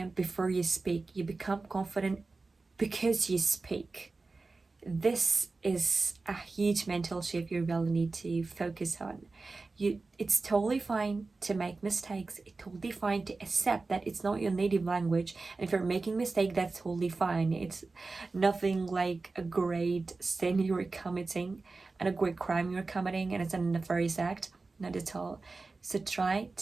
before you speak. You become confident because you speak. This is a huge mental shift you really need to focus on. It's totally fine to make mistakes. It's totally fine to accept that it's not your native language. And if you're making a mistake, that's totally fine. It's nothing like a great sin you're committing and a great crime you're committing, and it's a nefarious act. Not at all. So try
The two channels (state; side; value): quieter; left; 3.8 dB